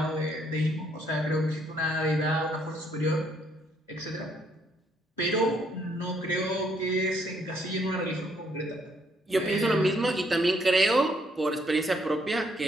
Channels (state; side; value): normal; both; correlation 0.70